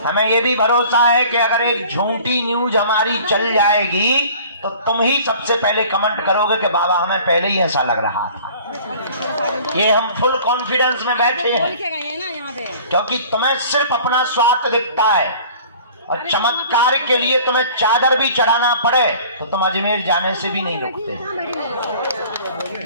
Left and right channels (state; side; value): inverted; both; correlation -0.48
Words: हमें ये भी भरोसा है कि अगर एक झूठी न्यूज हमारी चल जाएगी तो तुम ही सबसे पहले कमेंट करोगे कि बाबा हमें पहले ही ऐसा लग रहा था। ये हम फुल कॉन्फिडेंस में बैठे हैं क्योंकि तुम्हें सिर्फ अपना स्वार्थ दिखता है। और चमत्कार के लिए तुम्हें चादर भी चढ़ाना पड़े तो तुम अजमेर जाने से भी नहीं रुकते।